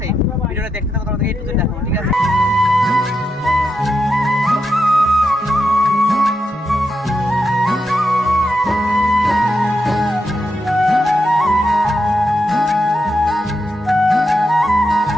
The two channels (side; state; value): both; normal; correlation 0.85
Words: ভিডিওটা দেখতে থাকো, তোমাদেরকে A to Z দেখাবো, ঠিক আছে।